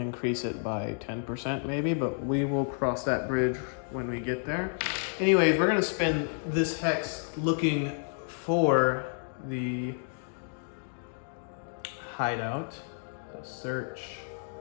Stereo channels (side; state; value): right; silent; 57 dB below the other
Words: it by 10% maybe, but we will cross that bridge when we get there. Anyways, we're gonna spend this hex looking for the hideout. So search.